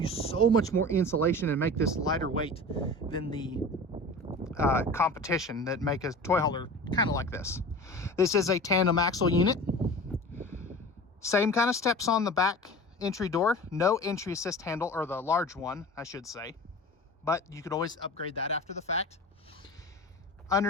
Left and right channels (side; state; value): both; normal; correlation 0.36